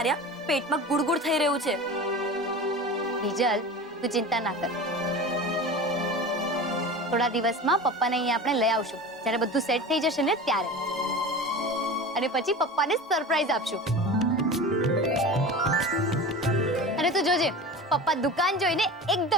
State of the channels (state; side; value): normal; both; correlation 0.33